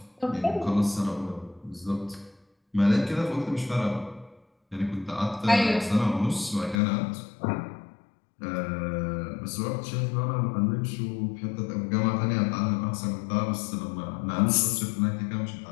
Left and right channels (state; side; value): drops out; right; at 6.8 s